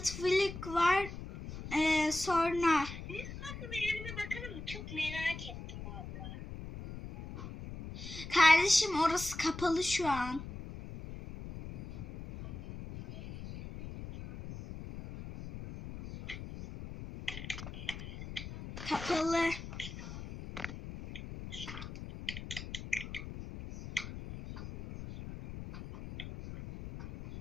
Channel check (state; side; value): noise; left; rumble, 10 dB below the sound